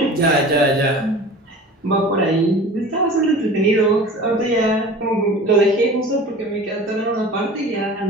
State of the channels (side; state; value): both; normal; correlation 0.39